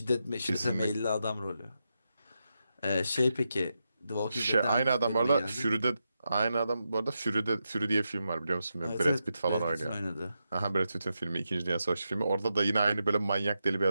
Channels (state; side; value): inverted; both; correlation -0.87